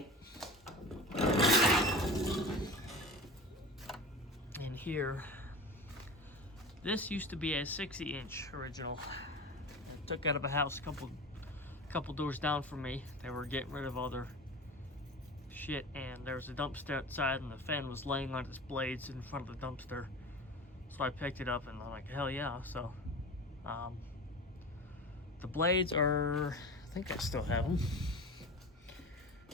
In here, this used to be a 60-inch original. I took out of a house a couple doors down from me. They were getting rid of all their shit, and there was a dumpster outside, and the fan was laying on its blades in front of the dumpster. So I picked it up, and I'm like, hell yeah. So the blades are, I think I still have them.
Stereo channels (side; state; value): both; normal; correlation 0.32